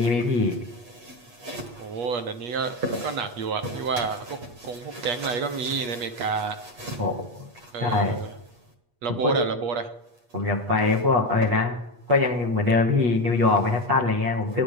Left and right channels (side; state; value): left; late; 8.3 ms